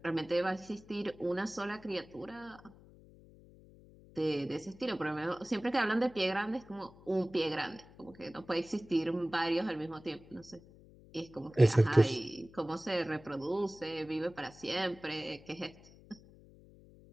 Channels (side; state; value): left; noise; hum, 22 dB below the sound